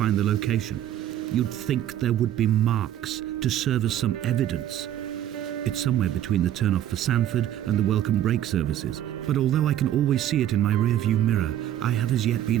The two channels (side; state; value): left; quieter; 11.7 dB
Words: the location. You'd think there would be marks to serve as some evidence. It's somewhere between the turn-off for Sanford and the welcome brake services, but although I can always see it in my rear-view mirror, I have as yet